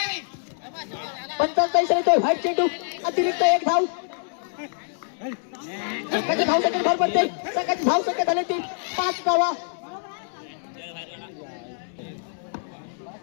45 येतोय व्हाईट चेंडू अतिरिक्त 1 धाव. संघाची धाव संख्या भर पडते. संघाची धाव संख्या झाली ती 5 धावा.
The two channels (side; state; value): right; silent; 61 dB below the other